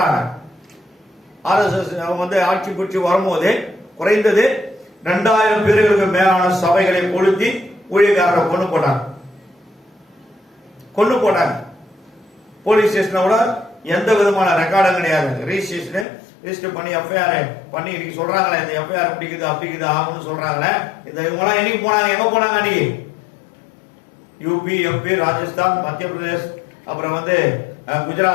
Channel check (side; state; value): right; drops out; at 16.1 s